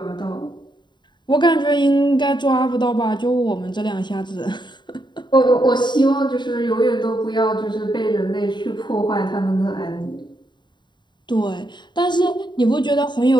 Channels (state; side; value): late; right; 0.22 ms